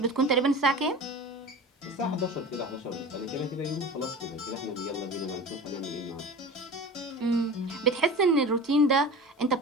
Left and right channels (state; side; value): normal; both; correlation 0.34